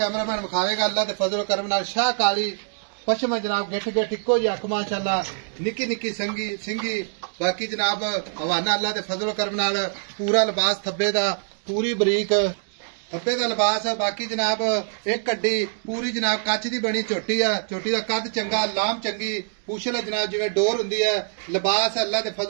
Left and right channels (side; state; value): left; silent; digital silence